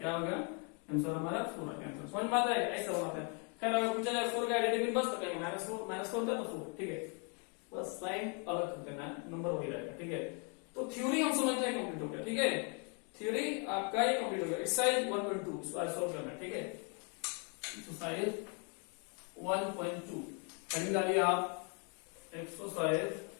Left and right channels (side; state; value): right; quieter; 37.4 dB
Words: होगा, आंसर हमारा 4 आएगा। आंसर समझ में आता है, ऐसा होता है। खैर अगर पूछा जाए 4 का एडिटिव इनवर्स तो कहेंगे -4 था तो 4। ठीक है, बस साइन अलग कर देना, नंबर वही रहेगा। ठीक है, तो थ्योरी हम समझते हैं कंप्लीट हो गया। ठीक है, थ्योरी आपका ये कंप्लीट हो गया। एक्सरसाइज 1.2 इसको आज सॉल्व करना है। ठीक है, एक्सरसाइज 1.2 हेडिंग डालिए आप, एक्सरसाइज